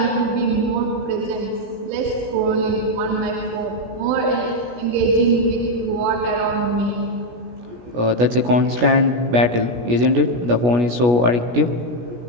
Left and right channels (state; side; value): late; left; 17 ms